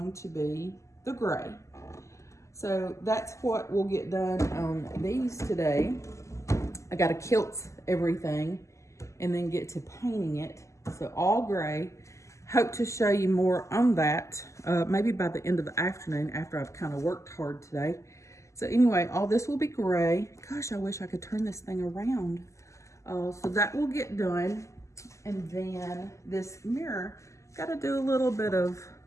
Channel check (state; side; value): late; right; 0.15 ms